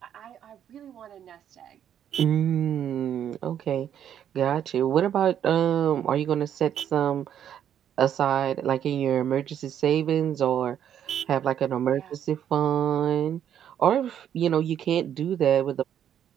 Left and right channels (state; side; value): quieter; left; 9.7 dB